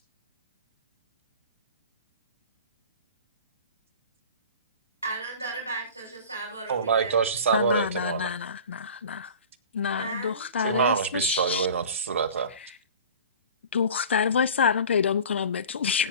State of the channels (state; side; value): inverted; both; correlation -0.40